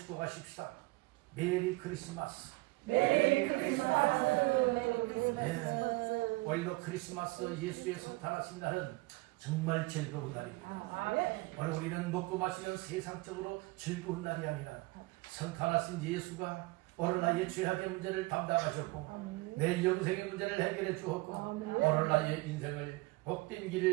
메리 크리스마스. 메리 크리스마스. 네. 오늘도 크리스마스 예수의 성탄하신 날은 정말 즐거운 날입니다. 오늘 우리는 먹고 마시는 세상적으로 즐거운 날이 아니라 성탄하신 예수가 오늘 나의 죄악의 문제를 담당하셨고 내 영생의 문제를 해결해 주었고 오늘 나의 인생을 복된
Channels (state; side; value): quieter; left; 23.1 dB